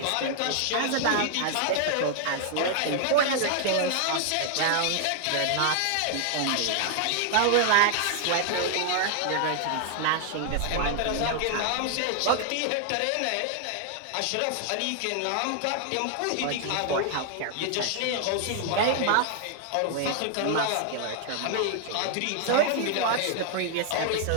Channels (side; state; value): both; different; correlation 0.00